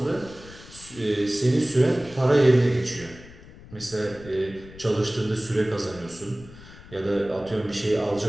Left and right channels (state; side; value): noise; left; rumble, 19 dB below the sound